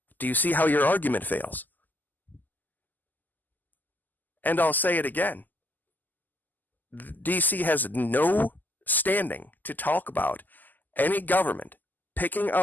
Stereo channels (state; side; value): late; right; 0.085 ms